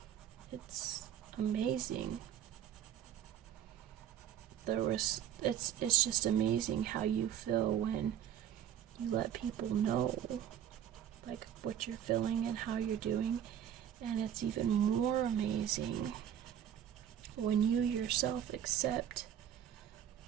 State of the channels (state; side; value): quieter; left; 10.0 dB